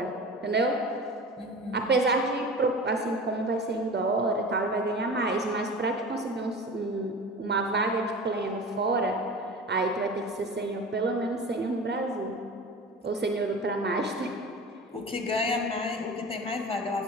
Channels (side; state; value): both; normal; correlation 0.35